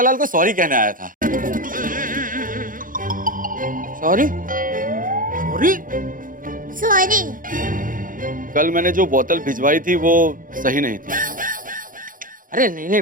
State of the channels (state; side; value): late; left; 0.40 ms